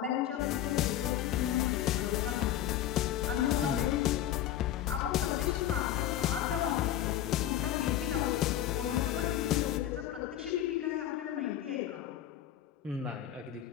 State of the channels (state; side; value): quieter; right; 11.8 dB